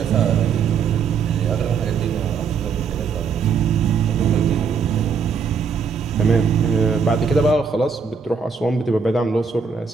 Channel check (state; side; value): quieter; left; 5.9 dB